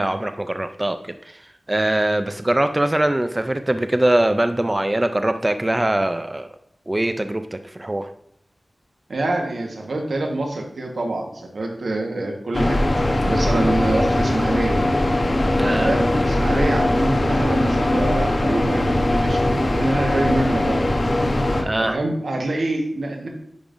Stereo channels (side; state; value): both; normal; correlation 0.97